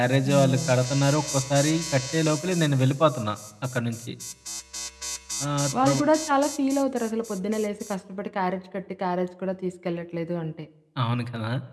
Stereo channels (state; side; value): identical; both; correlation 1.00